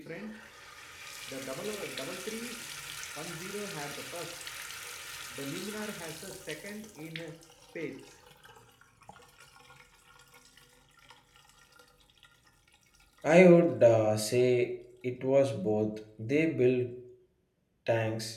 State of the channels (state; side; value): identical; both; correlation 1.00